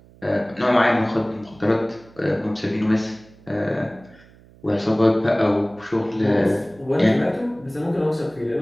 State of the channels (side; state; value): right; noise; hum, 26 dB below the sound